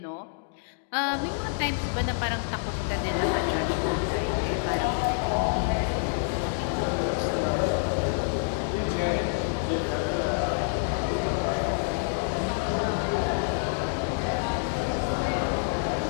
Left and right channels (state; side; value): silent; right; digital silence